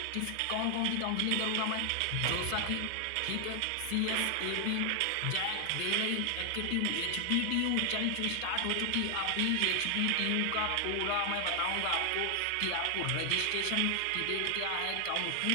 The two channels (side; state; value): both; different; correlation 0.00